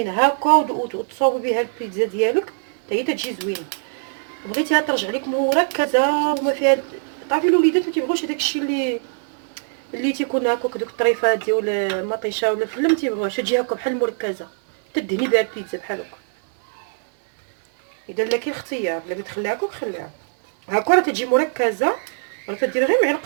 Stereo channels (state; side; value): silent; left; digital silence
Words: هكا وتصوبي بها البيتزا ديالك حتى هي تجي زوينه. بغيتيها ترجع لك مركزه وما فيها، تعرفي الوليدات ما تيبغوش داك الشيء اللي تيكون هكاك دوك الطريفات ديال المطيشه ولا الفله، ما تيبغوش تجي هكا بحال مركزه تدهني بها البيتزا بحال هكا. اذا لا كاين اختيار بغيتي تخليها هكا خليها هكا راه تجي مركزه، راه تدير غير